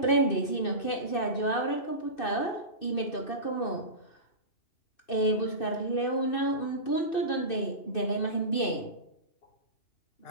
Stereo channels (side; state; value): right; late; 2.6 ms